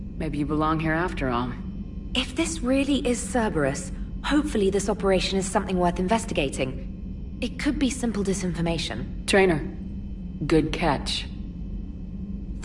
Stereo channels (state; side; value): identical; both; correlation 1.00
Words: Maybe you belong here after all. If this really is Cerberus, hopefully this operation is something worth investigating. It could be simple disinformation. Trainer, good catch.